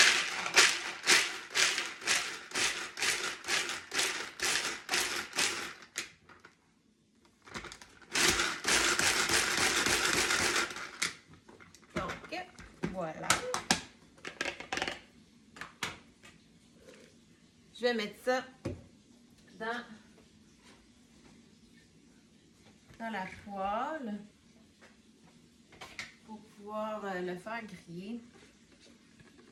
Donc, voilà. Je vais mettre ça dans la poêle pour pouvoir le faire griller.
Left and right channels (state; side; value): identical; both; correlation 1.00